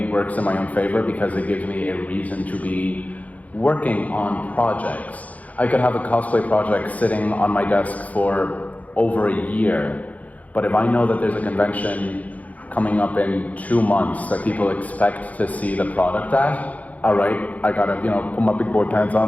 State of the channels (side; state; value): right; late; 0.073 ms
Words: works in my own favor because it gives me a reason to be working on projects. I could have a cosplay project sitting on my desk for over a year, but if I know that there's a convention coming up in 2 months that people expect to see the product at, all right, I gotta, put my big boy pants